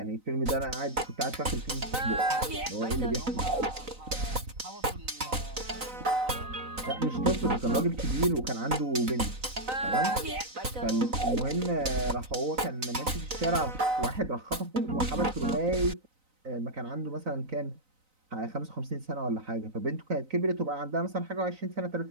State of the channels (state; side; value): late; left; 3.9 ms